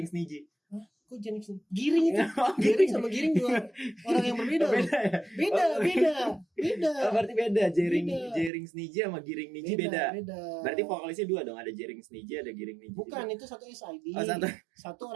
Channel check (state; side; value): drops out; left; at 8.5 s